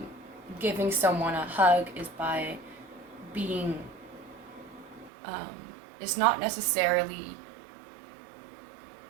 giving someone a hug, is by being, it's not necessarily,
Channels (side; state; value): left; drops out; at 5.1 s